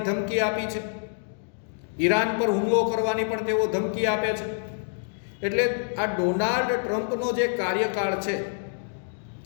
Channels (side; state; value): right; silent; 60 dB below the other